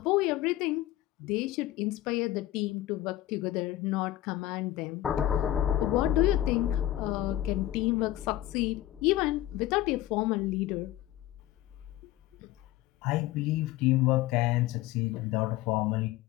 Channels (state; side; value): quieter; right; 14.6 dB